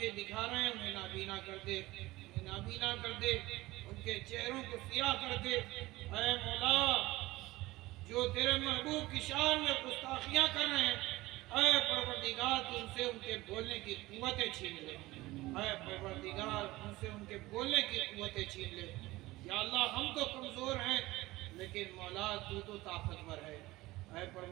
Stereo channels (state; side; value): quieter; left; 19.0 dB